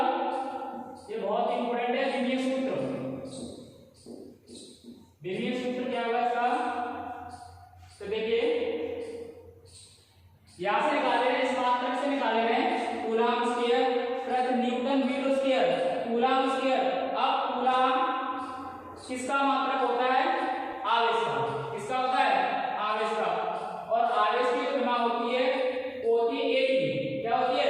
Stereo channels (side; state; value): both; identical; correlation 1.00